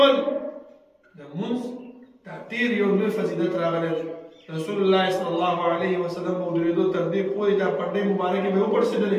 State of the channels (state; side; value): identical; both; correlation 1.00